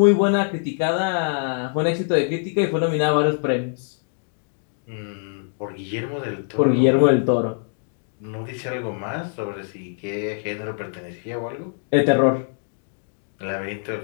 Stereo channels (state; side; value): silent; right; digital silence